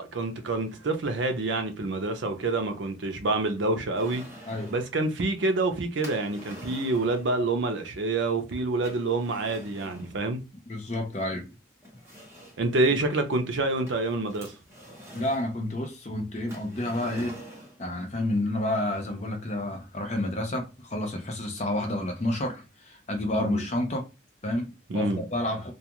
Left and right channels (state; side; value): normal; both; correlation 0.32